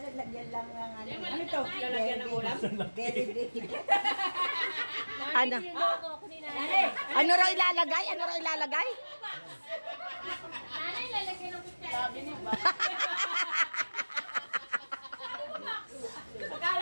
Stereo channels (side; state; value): both; inverted; correlation -1.00